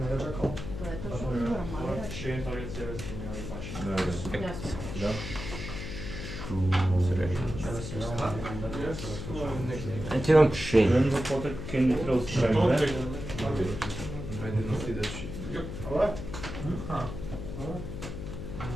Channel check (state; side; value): noise; left; hum, 7 dB below the sound